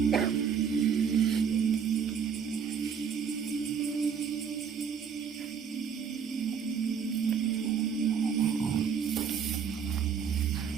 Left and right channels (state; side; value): quieter; left; 7.0 dB